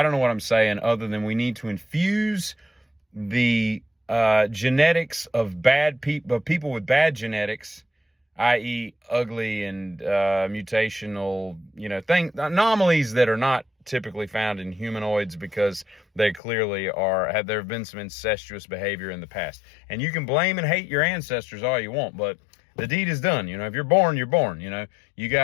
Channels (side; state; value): right; drops out; at 16.4 s